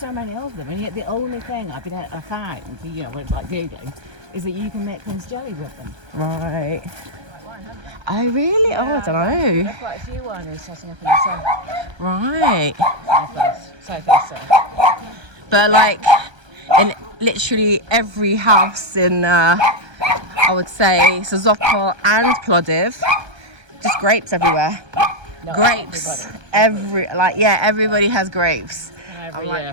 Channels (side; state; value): left; late; 1.3 ms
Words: many of them, and yet the only thing I found, you know, when like googling, is that you can make quince jelly with them. Right. Oh, really? Oh, I don't know. There are quite a few wineries setting up in the south. Right. South. But like in literally every house in, I would say, Sozopol and Plovdiv, just grapes everywhere. No, Grapes. Everybody has grapes. Every year